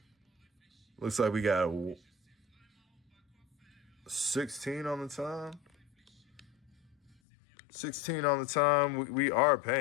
Looks like we got 16 on the time. 16 on the time. We are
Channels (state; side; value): drops out; right; at 7.1 s